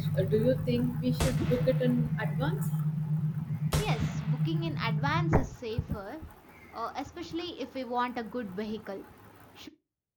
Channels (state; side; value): identical; both; correlation 1.00